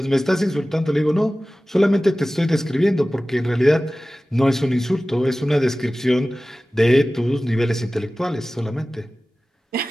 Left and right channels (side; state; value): both; normal; correlation 0.97